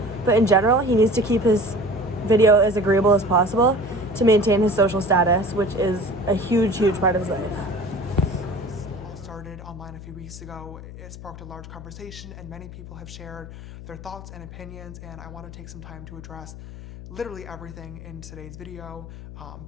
but in general, he needs to keep his video as agreeable as possible to maintain his social status, which is a huge part of his life. All started online a few weeks ago. It sparked a large conversation, and many people have shared their thoughts and opinions, and I want to take some time to address literally everything in today's video.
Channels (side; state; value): left; noise; hum, 13 dB below the sound